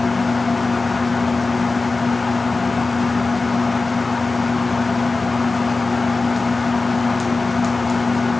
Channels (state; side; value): quieter; right; 3.6 dB